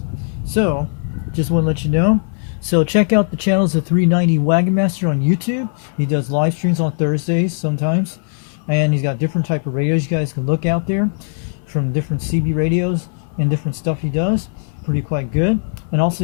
So just want to let you know. So check out the channels of 390 Wagon Master on YouTube. He does live streams on Thursdays sometimes. And he's got different type of radios you guys can look out there from different CB radios and different stuff he does. Pretty quite good. And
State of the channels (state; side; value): silent; right; 58 dB below the other